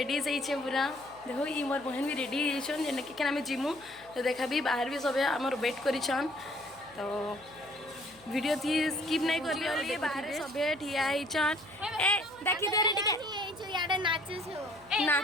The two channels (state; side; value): noise; left; hum, 26 dB below the sound